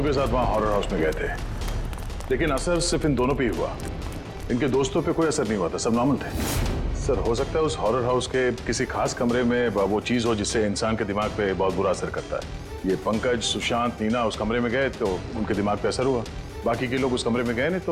के साथ वहाँ हॉरर हाउस में गए थे, लेकिन असर सिर्फ इन दोनों पे ही हुआ। इनके दोस्तों पे कोई असर नहीं हुआ था, सब नॉर्मल थे। सर हो सकता है उस हॉरर हाउस के किसी खास कमरे में वो चीज़ हो जिससे इंसान के दिमाग पे बहुत बुरा असर करता है। ये पंकज, सुशांत, नीना उस कमरे में गए तो उनके दिमाग पे असर हुआ। बाकी के लोग उस कमरे में गए नहीं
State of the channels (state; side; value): identical; both; correlation 1.00